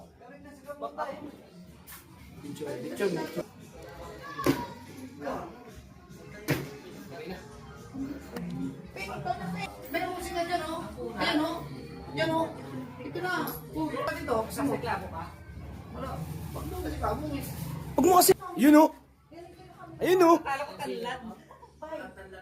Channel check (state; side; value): identical; both; correlation 1.00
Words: May musik na dyan, oh. Ayan, oh. Yan, oh. Ito na. Pag ito, sa mo. Wala. Pag mo kasi kamo, eh. Huwag mo kasi. Yun o. Ayun o. Kala ko tanlad.